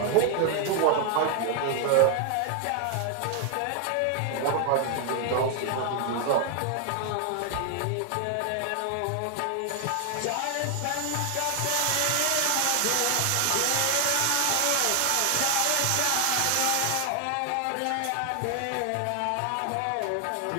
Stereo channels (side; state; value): both; different; correlation 0.00